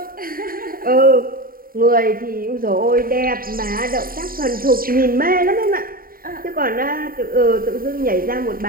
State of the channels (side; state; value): left; late; 0.42 ms